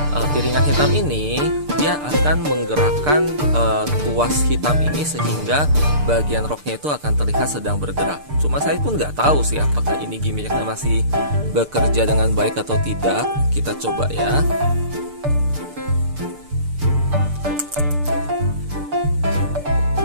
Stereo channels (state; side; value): late; left; 6.7 ms